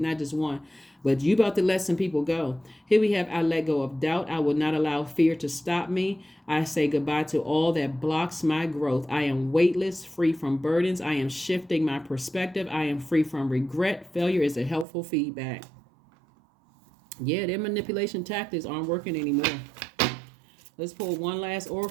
just one. But you about to let some people go. Here we have, I let go of doubt. I will not allow fear to stop me. I say goodbye to all that blocks my growth. I am weightless, free from burdens. I am shifting my perspective. I am free from regret. Failure is a helpful feedback. Yeah, their manipulation tactics aren't working anymore. Let's pull one last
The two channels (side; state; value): left; drops out; at 14.9 s